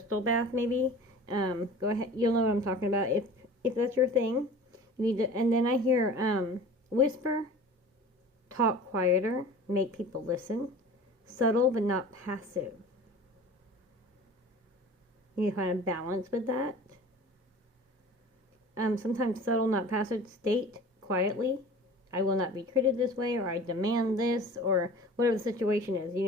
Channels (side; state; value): both; normal; correlation 0.41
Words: bath, maybe. Go ahead. You'll know what I'm talking about if that's your thing. You need to. And then I hear whisper, talk quieter, make people listen, subtle but not passive. You need to find a balance with that. Sometimes subtle, not passive. State quietly, I will not be treated this way, or I demand this, or whatever the situation is. You